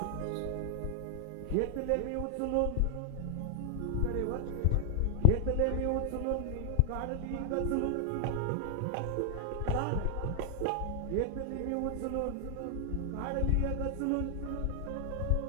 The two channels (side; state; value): both; different; correlation 0.00